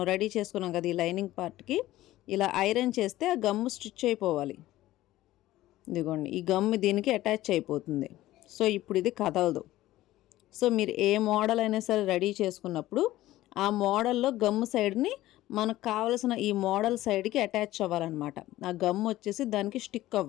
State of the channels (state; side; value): quieter; right; 15.7 dB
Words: రెడీ చేసుకున్నాం కదా ఈ లైనింగ్ పార్ట్కి ఇలా ఐరన్ చేస్తే ఆ గమ్ స్టిచ్ అయిపోవాలి. ఇదిగోండి ఈ గమ్ దీనికి అటాచ్ అయిపోతుంది. సో ఇప్పుడు ఇది కదలదు. సో మీరు ఏ మోడల్ అయినా సరే రెడీ చేసుకున్నప్పుడు ఆ మోడల్లో గమ్ సైడ్ని మనకు కావలసిన ఈ మోడల్ సైడ్కి అటాచ్ అవ్వాలన్నమాట. ఆ గమ్ వచ్చేసి దానికి స్టిక్